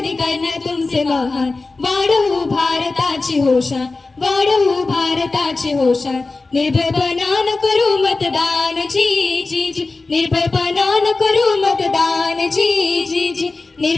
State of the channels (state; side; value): quieter; right; 3.6 dB